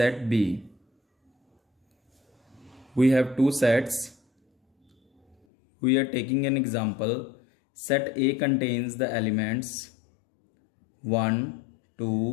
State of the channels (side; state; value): right; drops out; at 5.4 s